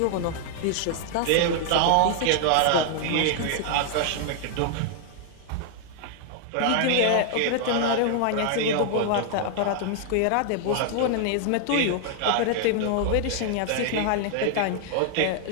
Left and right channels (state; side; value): different; both; correlation 0.00